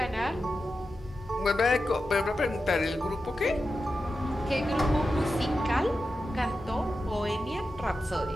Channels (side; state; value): both; normal; correlation 0.91